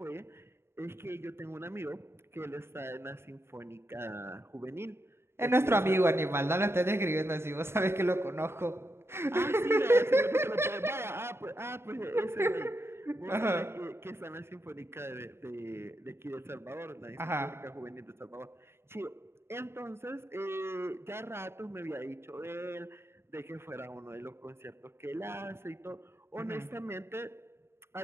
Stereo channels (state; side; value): late; left; 0.12 ms